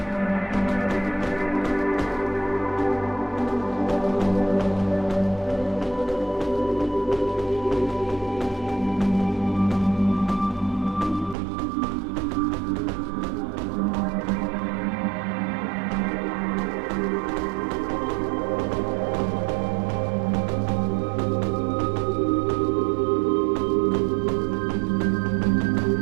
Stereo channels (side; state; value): left; drops out; at 11.4 s